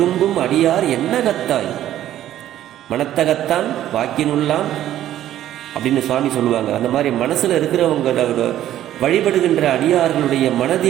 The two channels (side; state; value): left; quieter; 12.4 dB